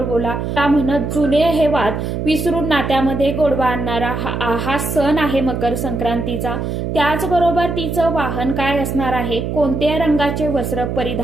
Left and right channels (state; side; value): noise; right; hum, 3 dB below the sound